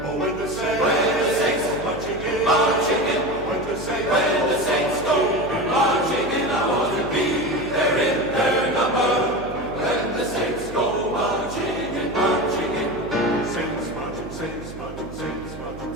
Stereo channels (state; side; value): noise; right; hum, 14 dB below the sound